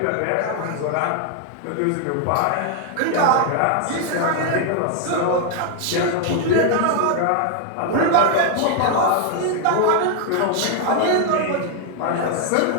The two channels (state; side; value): different; both; correlation 0.00